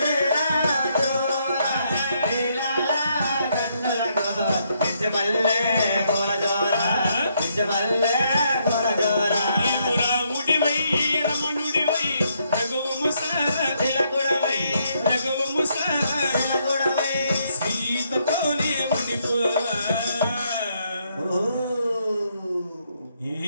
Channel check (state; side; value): inverted; both; correlation -0.74